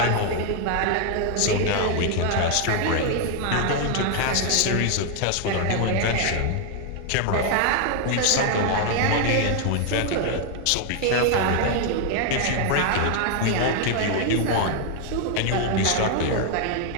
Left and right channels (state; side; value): different; both; correlation 0.00